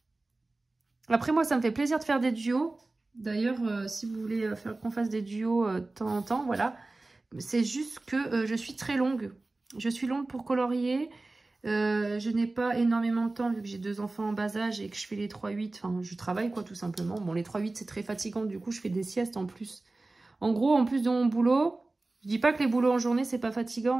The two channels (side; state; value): left; quieter; 3.1 dB